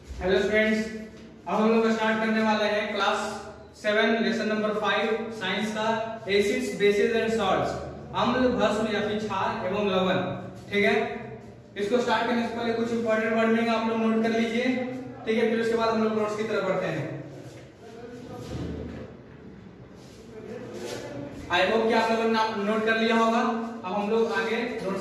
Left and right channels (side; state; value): both; identical; correlation 1.00